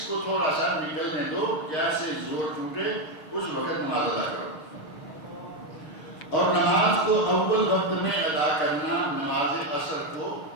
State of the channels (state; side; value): late; right; 6.6 ms